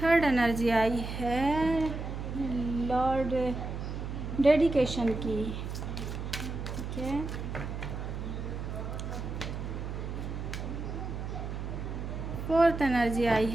Third energy आई है लॉर्ड डेडिकेशन की, ठीक है। फोर्थ एनर्जी आई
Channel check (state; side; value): noise; right; hum, 5 dB below the sound